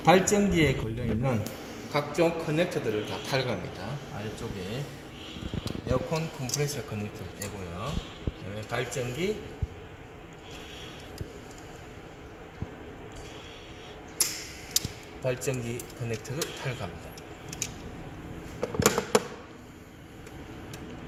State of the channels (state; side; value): identical; both; correlation 1.00